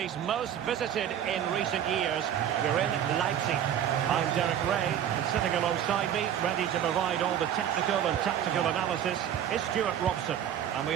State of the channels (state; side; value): quieter; left; 9.9 dB